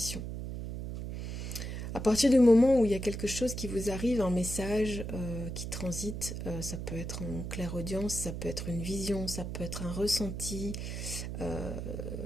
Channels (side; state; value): right; noise; hum, 5 dB below the sound